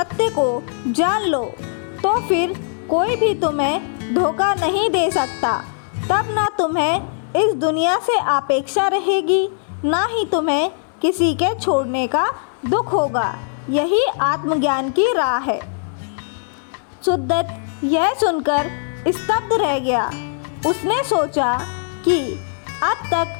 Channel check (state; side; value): silent; right; 66 dB below the other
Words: को जान लो, तो फिर कोई भी तुम्हें धोखा नहीं दे सकता। तब ना तुम्हें इस दुनिया से अपेक्षा रहेगी, ना ही तुम्हें किसी के छोड़ने का दुख होगा। यही आत्मज्ञान की राह है। सुद्दत यह सुनकर स्तब्ध रह गया। उसने सोचा कि अब